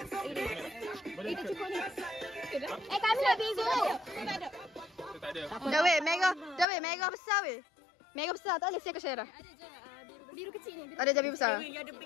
Kita cukup ni. Kami nak biru. Tak ada. Dah weh, mega besar weh. Mega besar tak boleh saya ke share dah. biru kecil ni. Ada jambi besar.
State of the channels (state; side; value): drops out; right; at 6.7 s